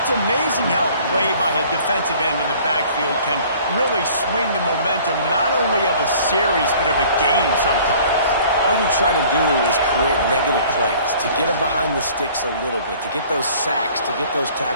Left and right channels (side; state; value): both; inverted; correlation -0.52